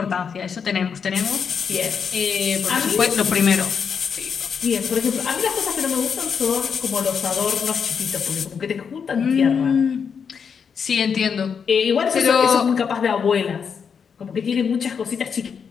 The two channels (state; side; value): quieter; right; 6.6 dB